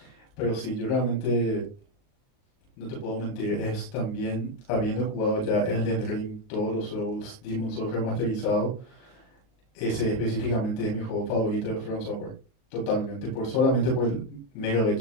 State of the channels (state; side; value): late; right; 38 ms